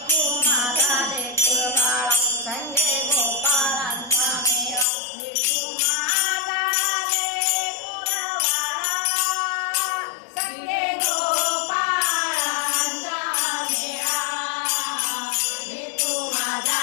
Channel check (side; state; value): right; drops out; at 4.9 s